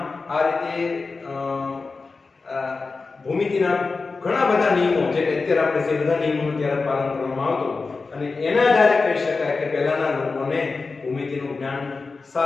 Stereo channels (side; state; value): right; quieter; 4.2 dB